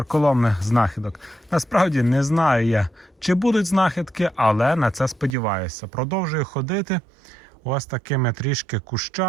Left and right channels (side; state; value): left; drops out; at 5.4 s